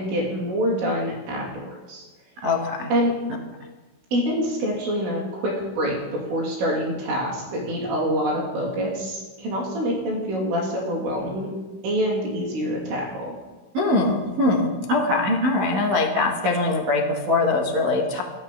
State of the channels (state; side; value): late; left; 16 ms